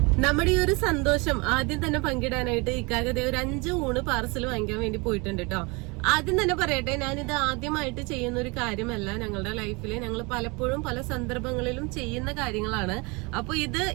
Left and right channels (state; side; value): quieter; left; 27.8 dB